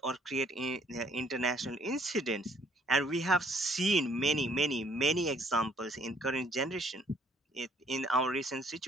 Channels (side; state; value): both; normal; correlation 0.62